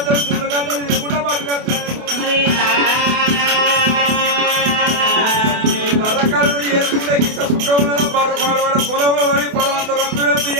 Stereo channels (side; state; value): left; late; 28 ms